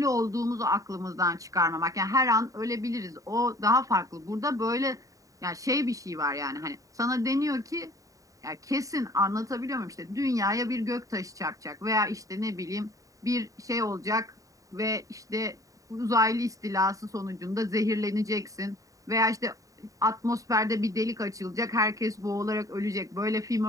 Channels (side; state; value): left; late; 0.16 ms